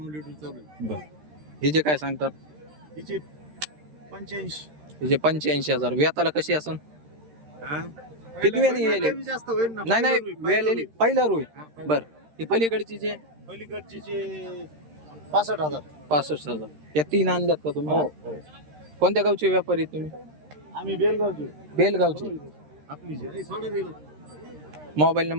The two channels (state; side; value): late; left; 13 ms